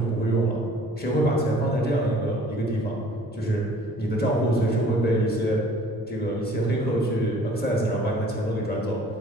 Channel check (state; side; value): normal; both; correlation 0.52